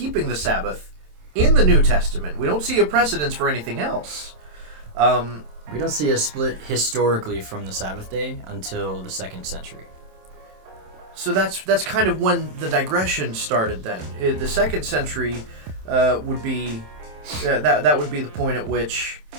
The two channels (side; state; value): left; late; 27 ms